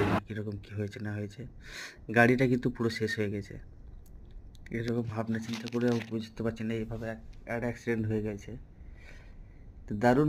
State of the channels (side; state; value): both; identical; correlation 1.00